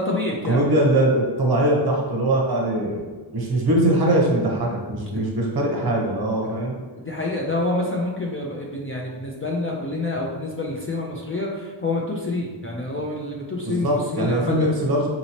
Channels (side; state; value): both; normal; correlation 0.17